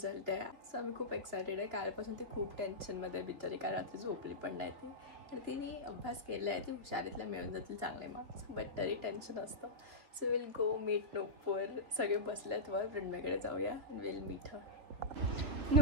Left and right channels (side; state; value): left; late; 2.8 ms